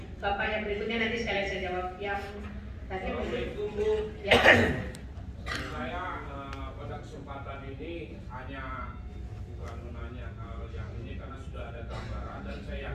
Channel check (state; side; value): identical; both; correlation 1.00